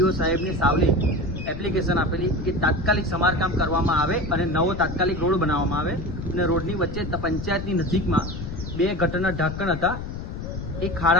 સાહેબને સાવલી એપ્લિકેશન આપેલી કે તાત્કાલિક સમારકામ કરવામાં આવે અને નવો તાત્કાલિક રોડ બનાવવામાં આવે. અને રોડની વચ્ચે પંચાયતની નજીકમાં 2 ગટરના ઢાંકણ હતા, એ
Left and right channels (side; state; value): left; noise; rumble, 8 dB below the sound